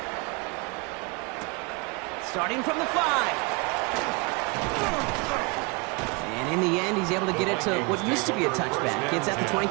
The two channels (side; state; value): left; quieter; 29.4 dB